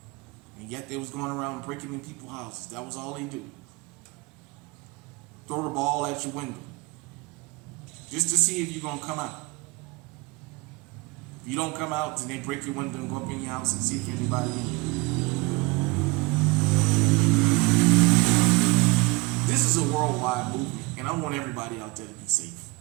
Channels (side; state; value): left; quieter; 25.0 dB